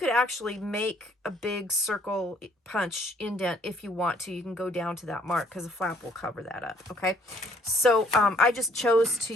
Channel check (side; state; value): both; normal; correlation 0.63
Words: actually make a big circle punch indent if you want to. You can go down to that mark because the flap will cover that up. Okay, so I just chose to